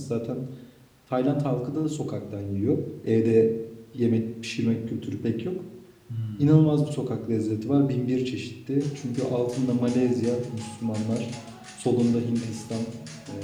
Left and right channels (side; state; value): both; identical; correlation 1.00